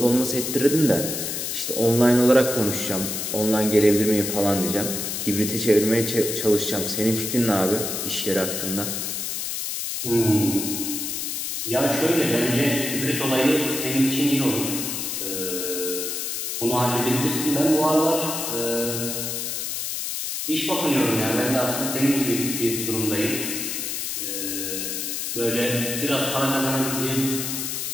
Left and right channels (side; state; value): left; noise; hiss, 3 dB below the sound